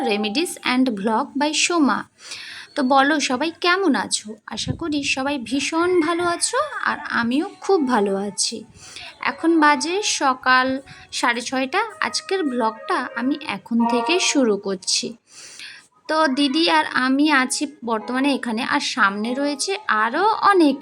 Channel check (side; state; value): both; identical; correlation 1.00